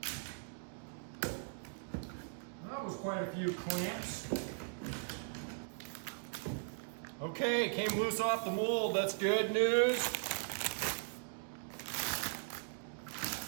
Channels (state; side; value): silent; left; digital silence